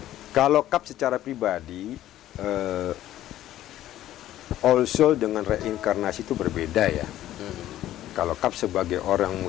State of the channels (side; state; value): right; quieter; 13.4 dB